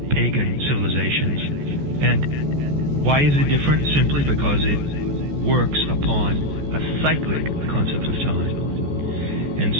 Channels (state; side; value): late; left; 14 ms